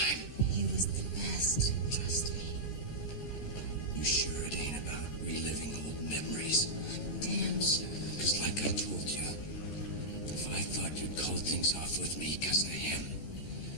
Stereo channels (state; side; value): late; right; 13 ms